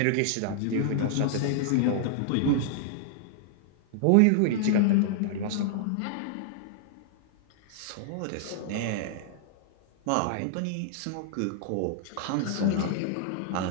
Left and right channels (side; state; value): both; different; correlation -0.01